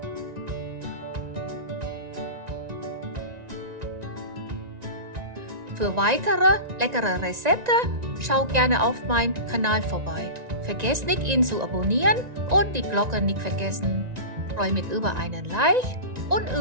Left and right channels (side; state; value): left; late; 1.9 ms